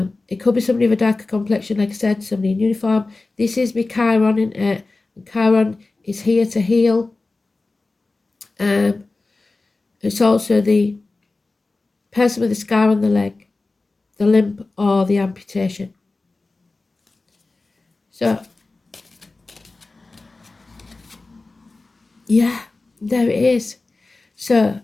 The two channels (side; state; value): right; quieter; 3.4 dB